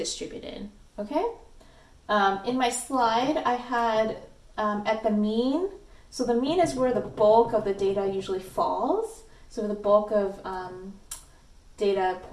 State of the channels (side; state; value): both; identical; correlation 1.00